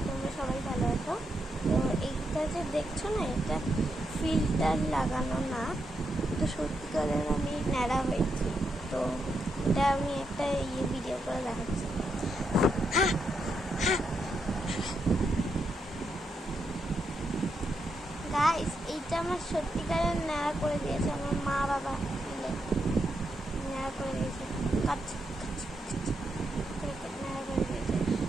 তোমরা সবাই ভালো আছো। তো এইটা যে দেখছো না, এটা ফিল্টার লাগানো না, তো সত্যিকারের আমি ন্যাড়া হয়েছি। তো এটা আমি একটা ভিডিও করে দেখাচ্ছি। গাইস, এইটা আমার সত্যিকারের ন্যাড়া করে দিয়েছে আমার মা বাবা মিলে। ন্যাড়া করে দিয়েছে,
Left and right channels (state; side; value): normal; both; correlation 0.82